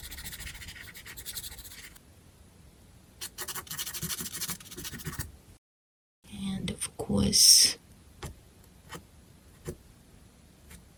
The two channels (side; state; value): both; identical; correlation 1.00